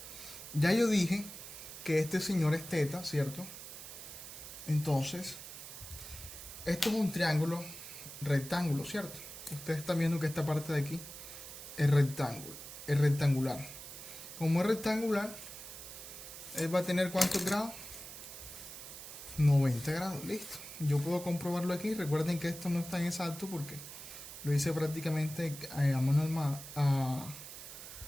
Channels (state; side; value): noise; right; hiss, 12 dB below the sound